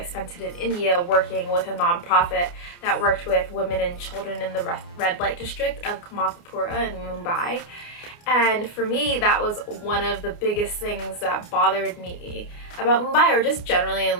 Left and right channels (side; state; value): right; late; 29 ms